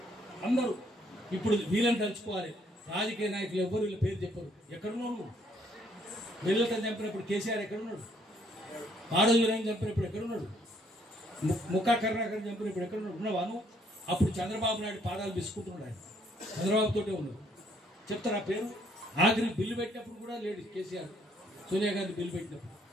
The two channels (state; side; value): normal; both; correlation 0.67